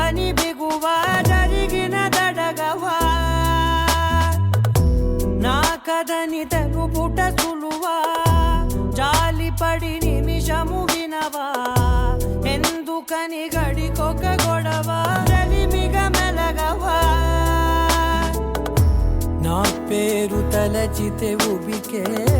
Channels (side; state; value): both; identical; correlation 1.00